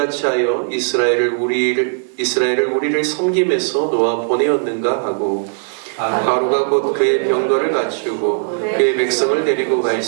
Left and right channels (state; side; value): silent; left; digital silence